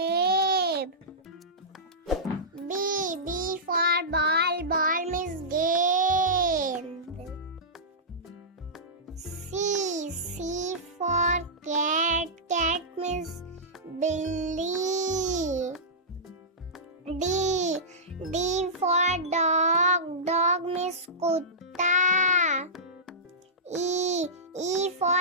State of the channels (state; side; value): normal; both; correlation -0.16